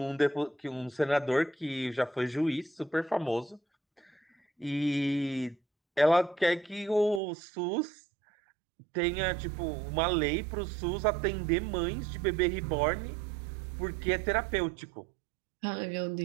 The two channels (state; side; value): drops out; left; at 7.2 s